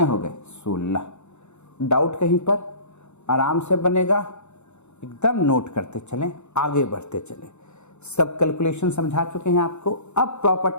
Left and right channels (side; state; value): right; late; 0.82 ms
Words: हो गए? 16। डाउट कहीं पर? आराम से बनेगा, एकदम नोट करते चलें, आगे बढ़ते चलें। सब कैलकुलेशन समझा चुके हैं आपको। अब